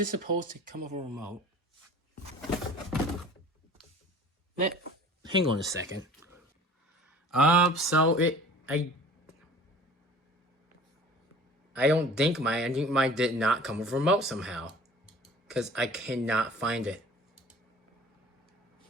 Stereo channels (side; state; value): both; normal; correlation 0.46